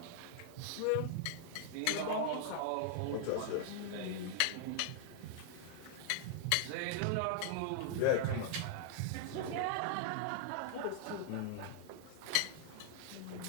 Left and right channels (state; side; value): different; both; correlation 0.00